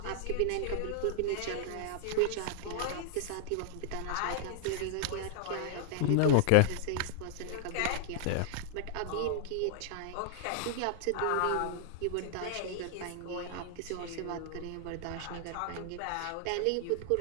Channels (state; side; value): different; both; correlation -0.01